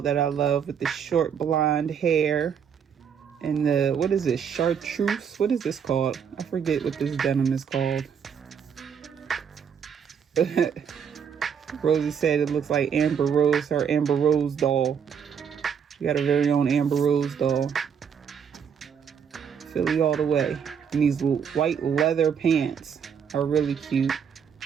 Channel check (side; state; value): left; quieter; 7.4 dB